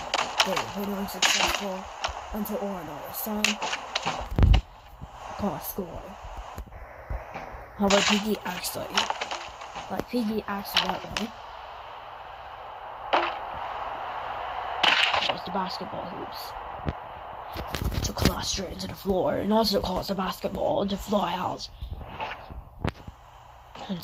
they were unsuccessful until Oren all of a sudden got a score. However, Piggy accidentally caused the basketball hoops to collapse straight into the floor, and also caused the basketball to fly out. And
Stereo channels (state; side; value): identical; both; correlation 1.00